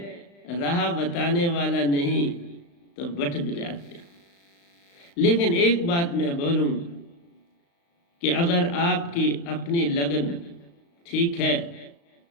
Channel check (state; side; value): late; right; 35 ms